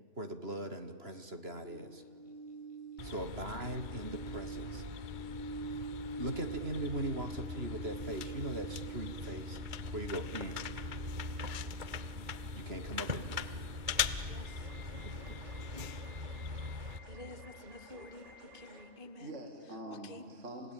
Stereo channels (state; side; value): late; left; 2.3 ms